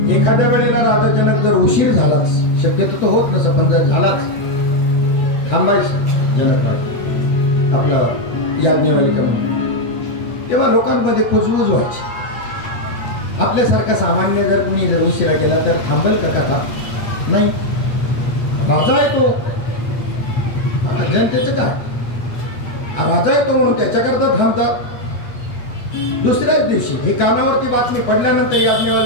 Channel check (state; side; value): late; right; 8.3 ms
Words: एखाद्या वेळेला राजा जनक जर उशीर झालाच, शक्यतो तो होत नसं, पण जर झालाच, थांबायचं जनक आपलं याज्ञवल्क्य म्हणून. तेव्हा लोकांमध्ये कुजबुज व्हायची. आपल्यासारखा सामान्य जर कुणी जर उशिरा केला तर थांबेल का कथा? नाही. राजा आहे तो, जनतेचं काय, राजा आहे तो म्हणून त्याच्याकरता थांबतात. दुसऱ्याच दिवशी ही कानावरती बातमी पडल्यानंतर